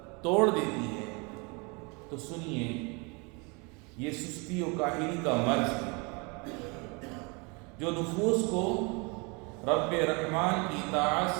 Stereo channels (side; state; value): left; quieter; 30.4 dB